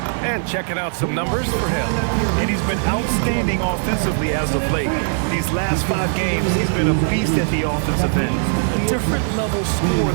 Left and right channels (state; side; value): silent; left; digital silence